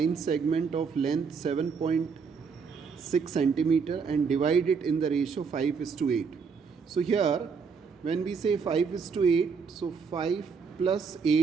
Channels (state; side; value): quieter; left; 5.6 dB